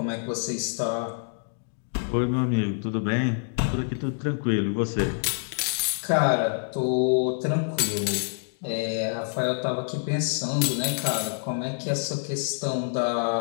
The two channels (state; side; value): silent; right; digital silence